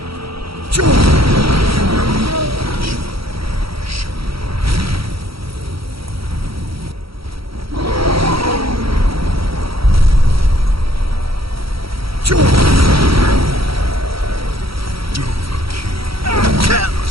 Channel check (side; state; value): left; late; 0.75 ms